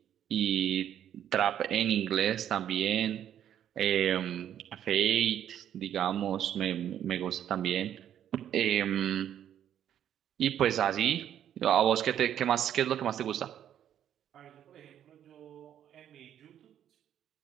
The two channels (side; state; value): left; quieter; 10.2 dB